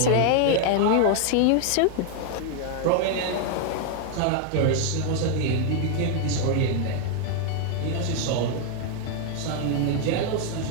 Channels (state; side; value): different; both; correlation 0.00